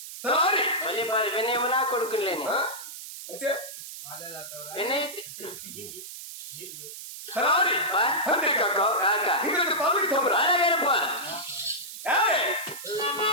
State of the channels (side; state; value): right; noise; hiss, 11 dB below the sound